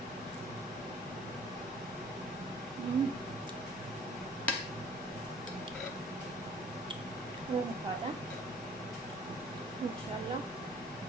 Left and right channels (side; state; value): both; normal; correlation 0.53